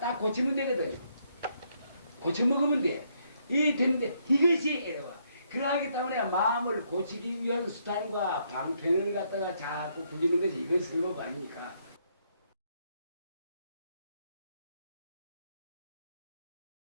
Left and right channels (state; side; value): inverted; both; correlation -0.73